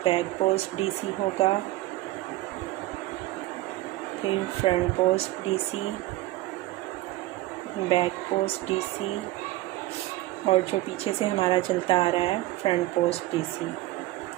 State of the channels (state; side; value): quieter; left; 17.4 dB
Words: बैक पोस्ट डीसी होगा, फिर front post DC, back post DC, और जो पीछे से हमारा चलता आ रहा है front post DC.